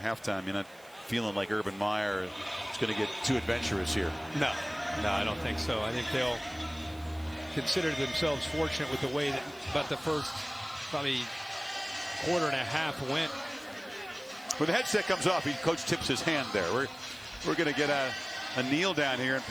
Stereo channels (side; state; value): right; noise; hiss, 25 dB below the sound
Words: You're not feeling like Urban Meyer is going to get too adventurous here. No, I don't think so. I think they'll consider themselves fortunate with the way that about the first probably quarter and a half went. When the headset comes off, coach tips his hand there. We're going to get a kneel down here, and